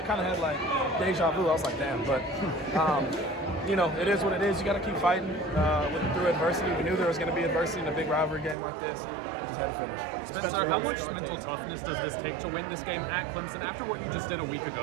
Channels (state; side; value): drops out; left; at 8.6 s